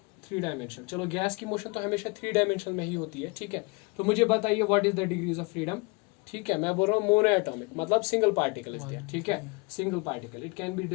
3 डायमेंशनल। चलो गैस की मोशन तो हमेशा 3 डायमेंशनल में ही होती है, ठीक है। तो मुझे बताइए what is the degrees of freedom, ठीक है। मैं बोल रहा हूँ मोनो एटॉमिक, मतलब सिंगल पार्टिकल इज देयर, ठीक है। Single particle, it can be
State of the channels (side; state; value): right; quieter; 29.0 dB